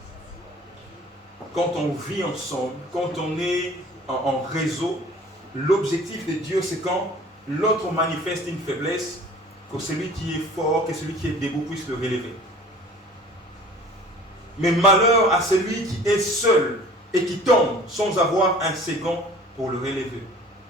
Quand on vit ensemble, quand on est en réseau, l'objectif de Dieu, c'est quand l'autre manifeste une faiblesse, que celui qui est fort, que celui qui est debout puisse le relever. Mais malheur à celui qui est seul et qui tombe sans avoir un second pour le relever.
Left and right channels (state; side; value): normal; both; correlation 0.47